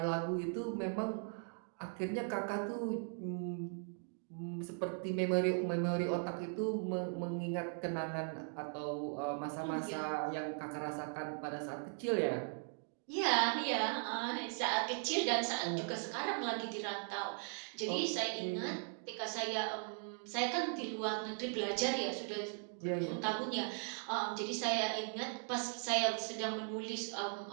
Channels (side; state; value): left; silent; 52 dB below the other